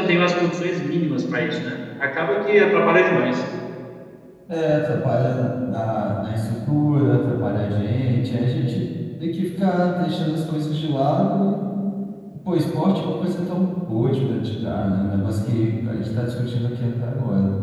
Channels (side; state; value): both; identical; correlation 1.00